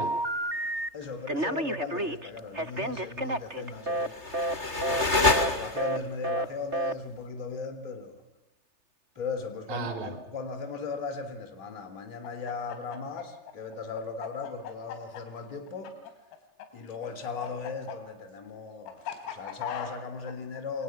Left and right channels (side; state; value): left; late; 3.3 ms